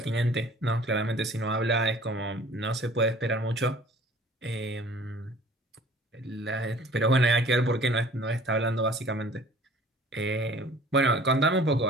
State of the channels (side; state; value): both; normal; correlation 0.50